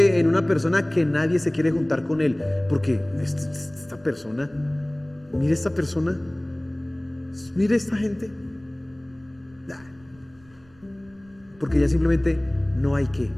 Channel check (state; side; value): noise; right; rumble, 29 dB below the sound